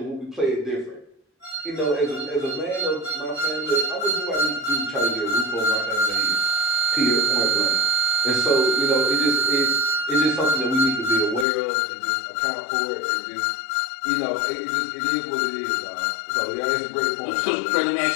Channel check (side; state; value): right; drops out; at 11.5 s